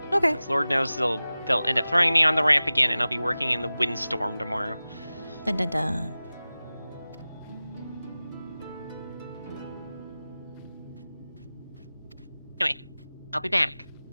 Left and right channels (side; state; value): both; inverted; correlation -0.97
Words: Okay. Lord knows they'll end up throwing me on the ramp again, and I'll be working in the windstorm tomorrow. Dun dun dun. Anyway, I'll be back.